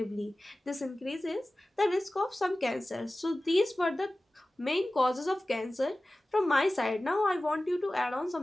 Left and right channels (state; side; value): normal; both; correlation 0.96